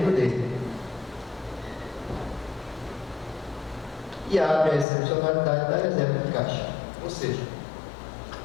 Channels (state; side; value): drops out; right; at 4.9 s